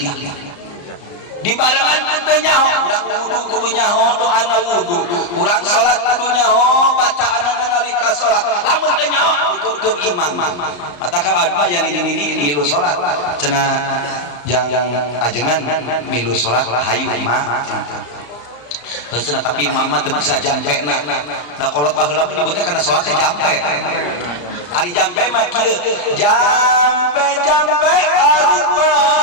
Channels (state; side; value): late; right; 34 ms